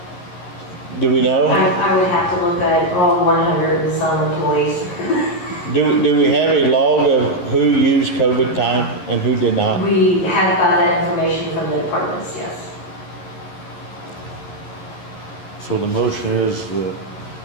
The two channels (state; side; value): late; right; 11 ms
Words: Do we know? I would have to look at all 100 and some employees. Do we have a log of who used COVID time and who did not? We have got that information from the departments, yes. So the motion is that